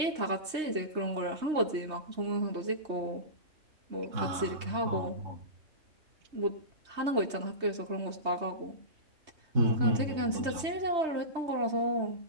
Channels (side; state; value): left; late; 3.2 ms